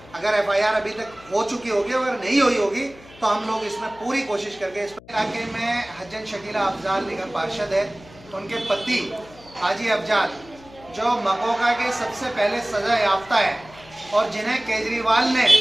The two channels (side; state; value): left; noise; hum, 22 dB below the sound